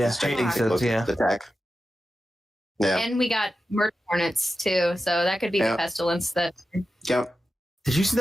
gigantic locust attack. Yeah, and we got murder hornets too, so that could be the pestilence that. Yep. Did you see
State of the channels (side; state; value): both; normal; correlation 0.92